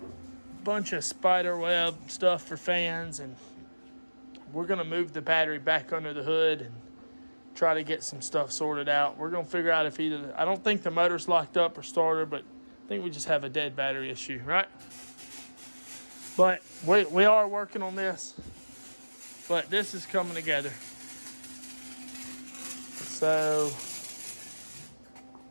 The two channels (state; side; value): inverted; both; correlation -1.00